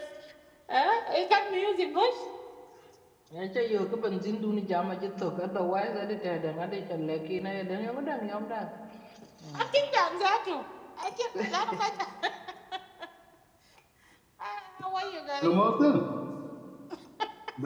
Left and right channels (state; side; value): identical; both; correlation 1.00